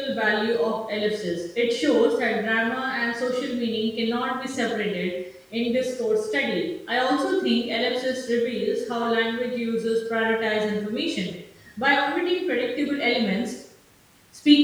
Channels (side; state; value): both; identical; correlation 1.00